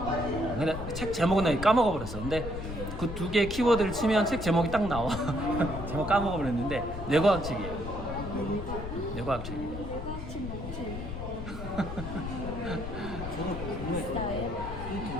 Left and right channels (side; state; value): left; noise; rumble, 7 dB below the sound